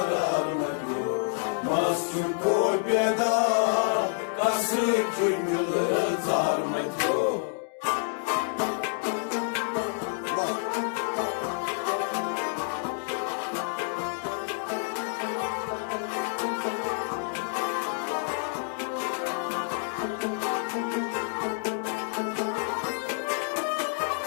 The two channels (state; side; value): silent; right; digital silence